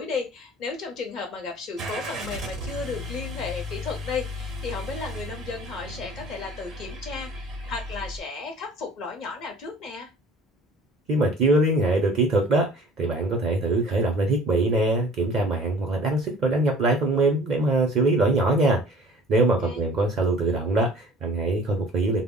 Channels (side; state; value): both; normal; correlation 0.48